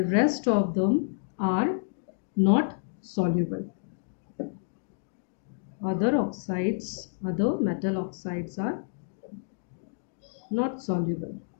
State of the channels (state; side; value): silent; right; digital silence